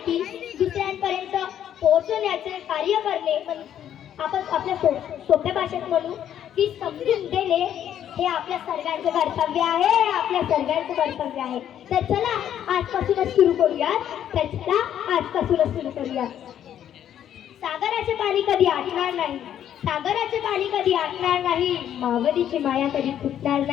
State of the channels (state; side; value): quieter; right; 10.3 dB